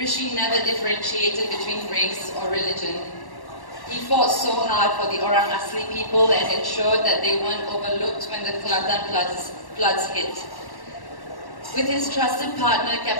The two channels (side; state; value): right; late; 1.1 ms